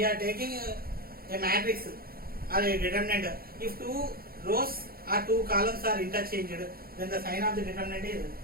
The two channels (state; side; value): late; left; 0.44 ms